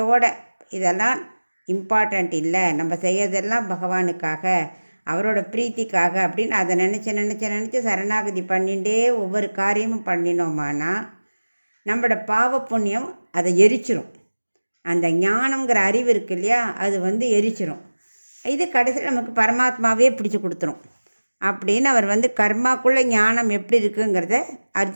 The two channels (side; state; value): both; inverted; correlation -1.00